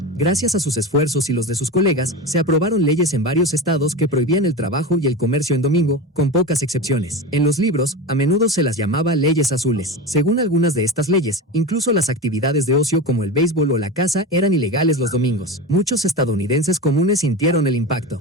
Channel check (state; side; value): normal; both; correlation 0.24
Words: Gracias a sus esfuerzos y los de sus colegas, se aprobaron leyes en varios estados que prohibían el trabajo y el comercio en domingo, con pocas excepciones. En los libros, a menudo se las llamaba leyes azules. Según algunas de estas leyes, incluso las actividades de ocio como el béisbol o la caza eran ilegales los domingos. Muchos estadounidenses comunes sintieron el impacto,